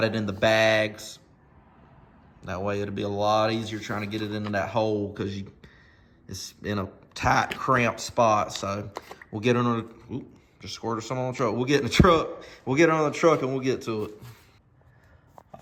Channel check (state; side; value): identical; both; correlation 1.00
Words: it in the bags. That way it'll be a lot easier trying to get it into that hole because it's in a tight, cramped spot. So we'll get under the, just squirted some on the truck. We'll get in the truck. We'll get on the truck and we'll get to it.